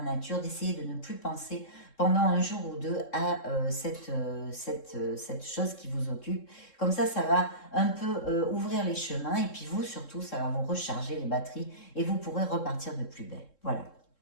nature, d'essayer de ne plus penser pendant un jour ou deux à cette chose qui vous occupe. Comme ça va un peu ouvrir les chemins et puis vous, surtout, ça va vous recharger les batteries et vous pourrez repartir de plus belle. Voilà.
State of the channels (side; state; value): right; late; 3.7 ms